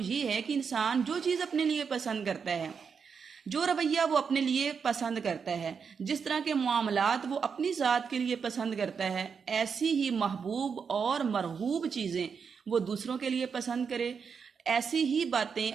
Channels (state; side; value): quieter; left; 6.1 dB